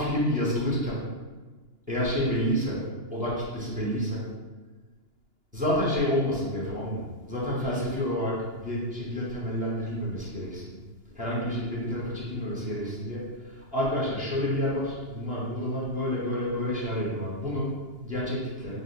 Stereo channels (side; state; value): left; late; 2.9 ms